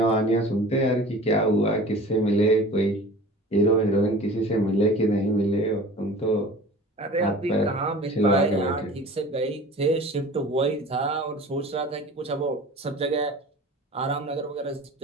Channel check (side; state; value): both; normal; correlation 0.41